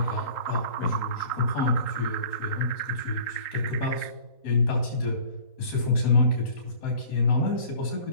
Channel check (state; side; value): late; right; 3.8 ms